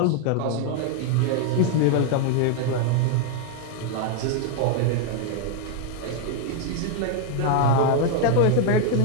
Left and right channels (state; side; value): different; both; correlation 0.01